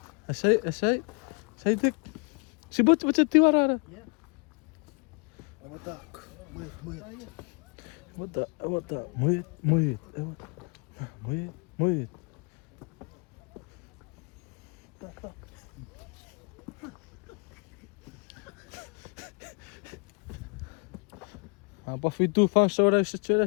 Say, Dick. Si bot tiwarara. Yeah. Muit. Apa fitu fan sora se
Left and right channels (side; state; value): right; quieter; 32.6 dB